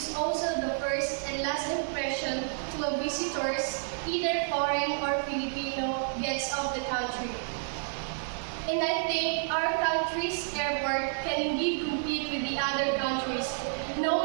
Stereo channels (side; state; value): left; silent; digital silence